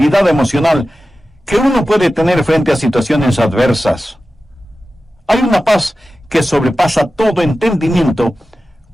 emocional que uno puede tener frente a situaciones adversas? Hay una paz que sobrepasa todo entendimiento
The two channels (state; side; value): normal; both; correlation 0.94